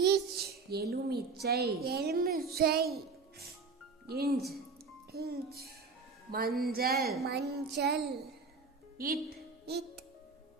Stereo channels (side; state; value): left; quieter; 4.5 dB